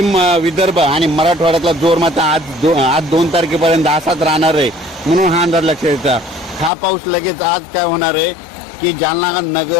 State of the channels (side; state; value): right; drops out; at 6.7 s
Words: विदर्भ आणि मराठवाड्यातला जोर मात्र आज 2 तारखेपर्यंत असाच राहणार आहे, म्हणून हा अंदाज लक्षात येतात। हा पाऊस लगेच आज काय होणार आहे की जालना,